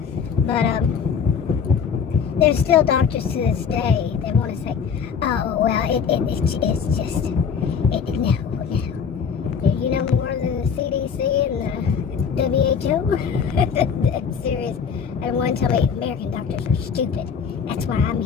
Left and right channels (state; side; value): quieter; right; 6.7 dB